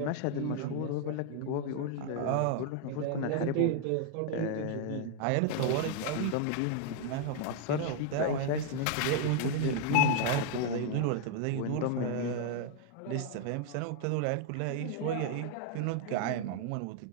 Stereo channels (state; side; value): different; both; correlation 0.00